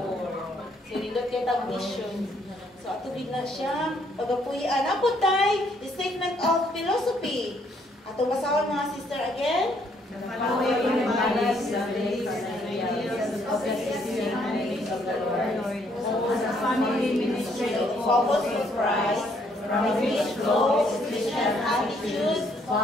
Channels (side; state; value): both; normal; correlation 0.68